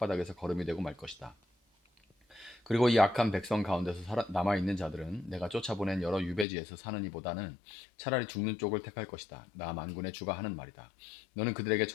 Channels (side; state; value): right; drops out; at 6.5 s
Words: 거름이 되고 말 것이다. 그리고 이 악한 백성 가운데서 남아있는 자들은 내가 쫓아보낸 여러 유배지에서 사는 이보다는 차라리 죽는 쪽을 택할 것이다. 나 만군의 주가 하는 말이다. 너는 그들에게